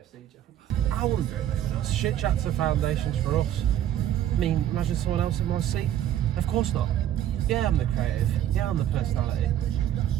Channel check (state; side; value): quieter; left; 11.4 dB